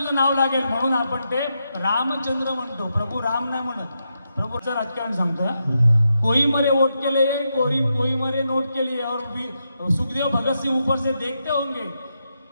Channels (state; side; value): inverted; both; correlation -0.84